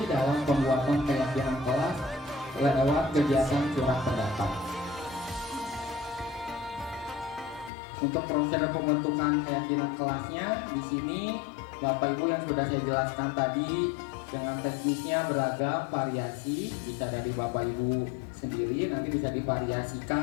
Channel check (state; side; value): drops out; right; at 7.7 s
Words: dalam pembuatan keyakinan kelas lewat kegiatan surat pendapat. Untuk proses pembentukan keyakinan kelasnya, di sini Bapak Ibu yang sudah saya jelaskan tadi dengan teknisnya beragam variasi, bisa dari Bapak Ibu sendiri, nanti bisa